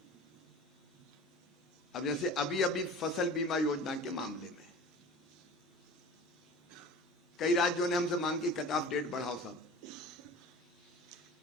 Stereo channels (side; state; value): both; normal; correlation 0.39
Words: अब जैसे अभी फसल बीमा योजना के मामले में कई राज्यों ने हमसे मांग की कट ऑफ डेट बढ़ाओ साहब,